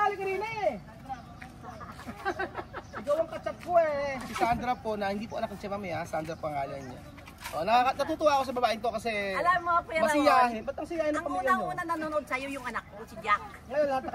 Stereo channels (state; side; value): identical; both; correlation 1.00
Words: halika rin eh. Ikaw ang katsap ko eh. Si Sandra po, na hindi po anak ng siya mamaya, Sandra pangalan niya. Natutuwa ako sa babaeng to kasi Alam mo, Kuya Raul, masiyahin. Ba't ang siyahin ng ang pamilya nyo? unang-una nanonood sa'yo yung anak ko, si Jack. Ngayon, lahat na